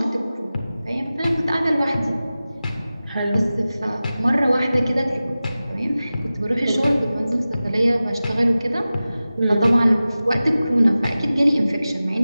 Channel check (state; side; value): inverted; both; correlation -0.96